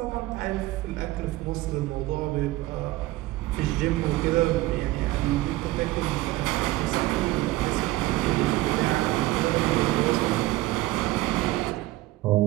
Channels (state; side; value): quieter; left; 17.9 dB